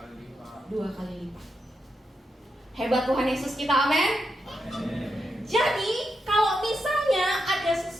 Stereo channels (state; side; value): normal; both; correlation 0.85